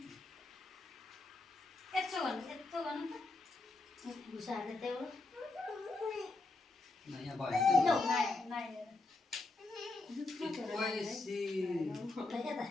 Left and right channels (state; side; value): quieter; right; 3.2 dB